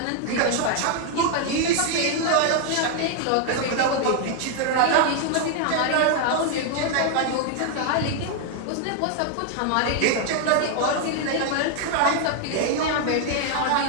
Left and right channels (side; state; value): both; different; correlation 0.00